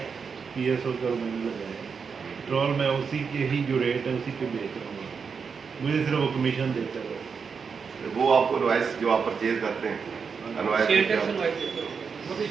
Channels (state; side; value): quieter; left; 5.8 dB